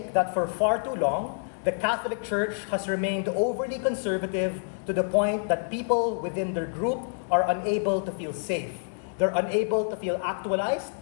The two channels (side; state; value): right; silent; digital silence